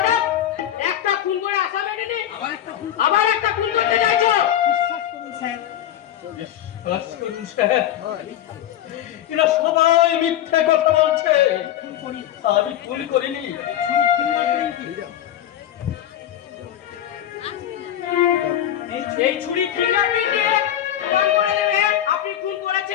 একটা খুন করে আসামি নেই, আবার একটা খুন করতে চাইছো? বিশ্বাস করুন স্যার, এরা সবাই মিথ্যে কথা বলছে। আমি খুন করিনি। এই ছুরি ফিঙ্গারপ্রিন্ট দিয়ে প্রমাণ করে দেবে আপনি খুন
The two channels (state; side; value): quieter; right; 11.5 dB